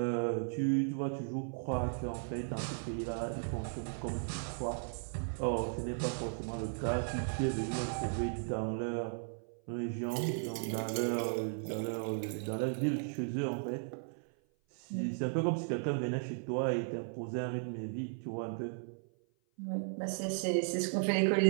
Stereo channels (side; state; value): left; silent; 54 dB below the other